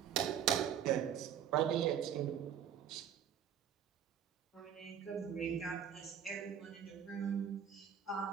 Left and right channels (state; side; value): quieter; left; 9.0 dB